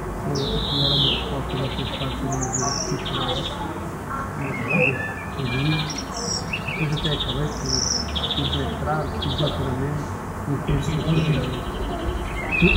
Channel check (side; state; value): both; identical; correlation 1.00